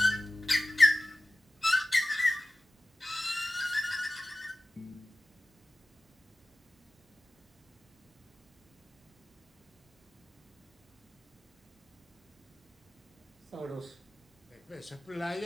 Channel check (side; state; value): both; normal; correlation 0.96